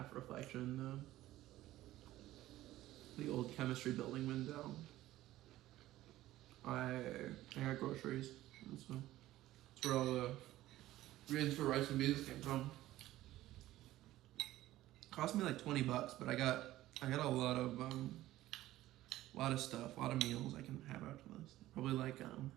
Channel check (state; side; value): quieter; left; 15.4 dB